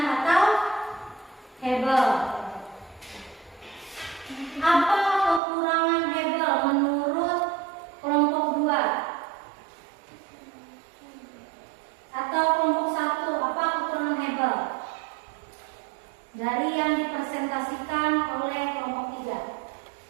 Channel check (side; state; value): left; drops out; at 5.4 s